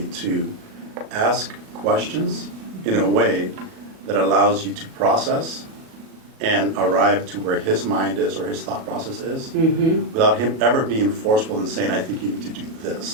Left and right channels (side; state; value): left; late; 37 ms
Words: to ask questions in a way that allows you to process and arrive to where his mind is or his thought process is, without him ever being forceful and saying, I think you need to do